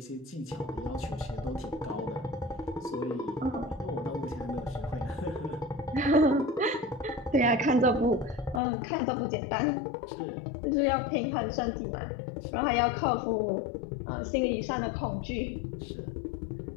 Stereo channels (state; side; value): drops out; right; at 8.6 s